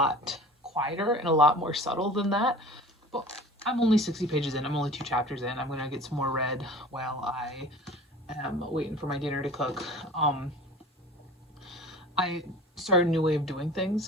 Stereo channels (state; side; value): normal; both; correlation 0.41